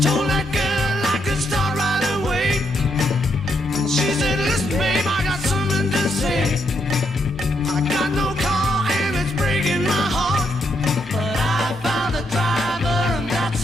told that girl I could start right away. She said, listen, babe, I got something to say. I got no car and it's breaking my heart, but I found a driver and that's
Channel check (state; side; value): normal; both; correlation 0.78